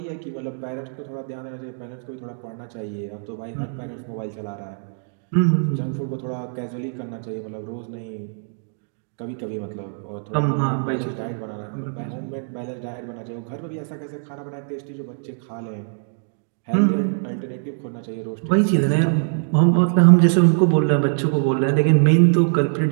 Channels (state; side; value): silent; left; digital silence